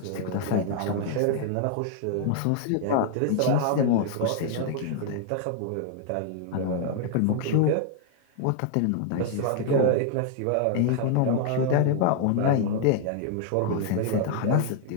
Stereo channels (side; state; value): both; different; correlation 0.00